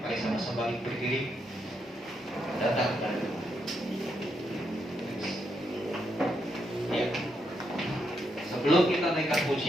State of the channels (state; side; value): normal; both; correlation 0.80